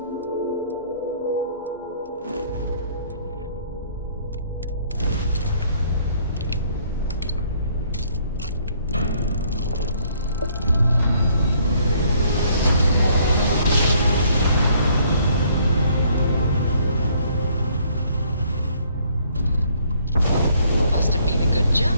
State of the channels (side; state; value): both; inverted; correlation -0.63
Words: Must have been a good